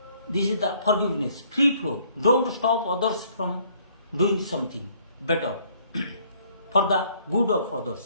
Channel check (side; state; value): both; inverted; correlation -0.62